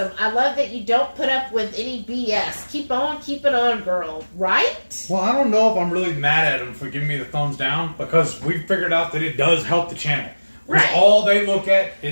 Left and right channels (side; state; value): both; inverted; correlation -1.00